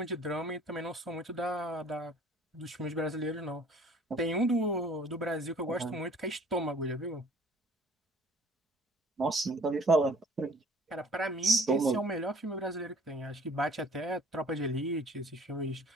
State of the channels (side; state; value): both; normal; correlation 0.52